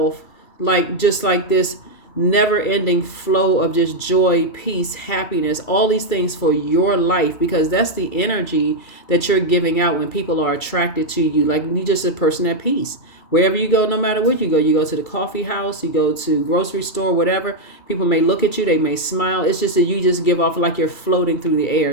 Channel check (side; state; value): right; late; 2.3 ms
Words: just like this never-ending flow of just joy, peace, happiness, all these things for your life, because that's the energy that you're giving out when people are attracted to you. Like you're just a person at peace. Wherever you go, no matter where you go to the coffee house, you go to grocery store, whatever, people may look at you, they may smile. It's just that you just give off like you're floating through the